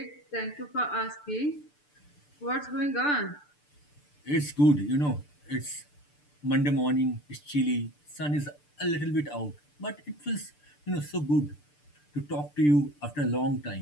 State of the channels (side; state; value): right; late; 6.8 ms